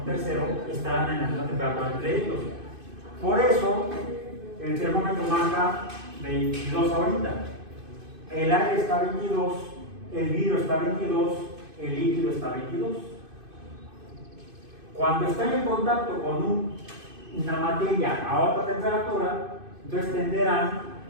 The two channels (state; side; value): late; left; 2.5 ms